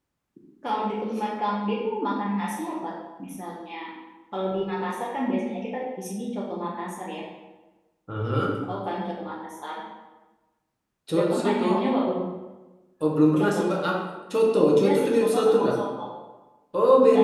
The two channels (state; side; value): identical; both; correlation 1.00